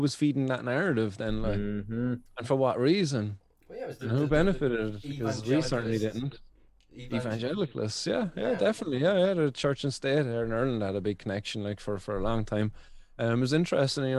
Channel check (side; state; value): both; identical; correlation 1.00